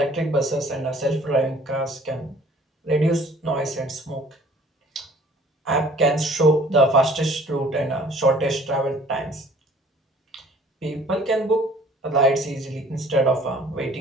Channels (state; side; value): normal; both; correlation 0.53